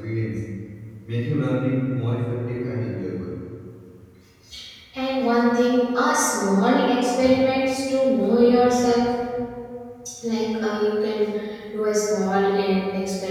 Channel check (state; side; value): identical; both; correlation 1.00